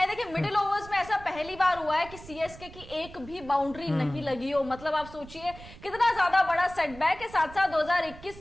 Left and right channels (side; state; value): right; noise; rumble, 17 dB below the sound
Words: देखिए मिडिल ओवर्स में ऐसा पहली बार हुआ है कि सीएसके की एक भी बाउंड्री नहीं लगी हो, मतलब आप सोचिए कितना ज्यादा बड़ा सेटबैक है। साथ साथ